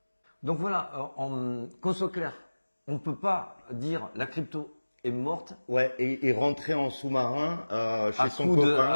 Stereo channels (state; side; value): inverted; both; correlation -1.00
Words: Donc voilà, qu'on soit clair, on ne peut pas dire la crypto est morte. Ouais, et rentrer en sous-marin chez son